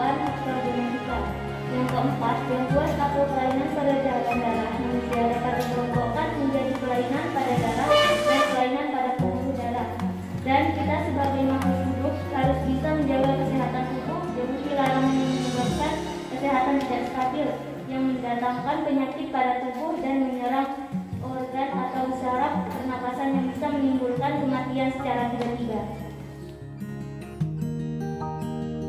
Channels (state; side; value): identical; both; correlation 1.00